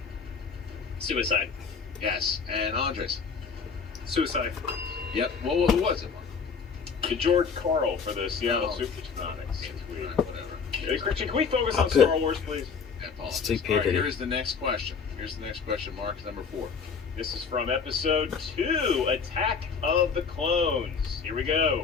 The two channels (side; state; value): right; quieter; 5.7 dB